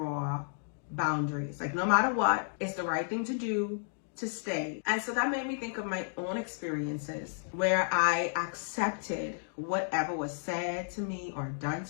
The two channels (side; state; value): right; silent; digital silence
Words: boundaries. Like no matter what, it's the right thing to do to stay. And so that made me think of my own experiences where I accepted whatever was said to me or done